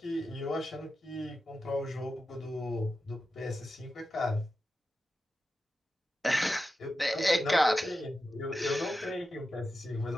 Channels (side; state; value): both; normal; correlation 0.91